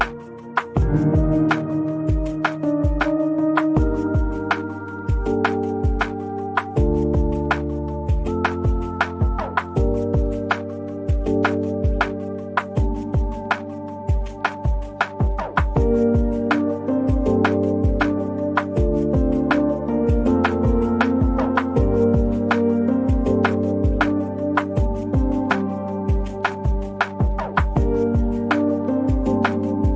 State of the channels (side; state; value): both; identical; correlation 1.00